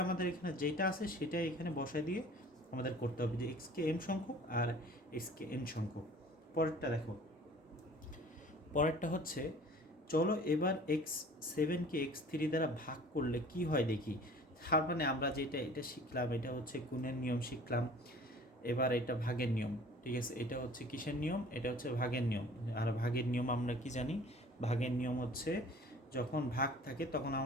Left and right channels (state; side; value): normal; both; correlation 0.48